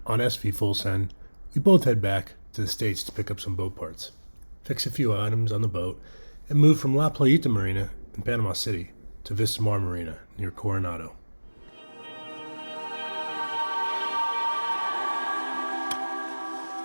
on SV Full Send, we both head back to the States to pick up some boat parts, fix a few items on the boat, and move from La Playita Marina in Panama City to Vista Mar Marina near Coronado.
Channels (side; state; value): both; inverted; correlation -1.00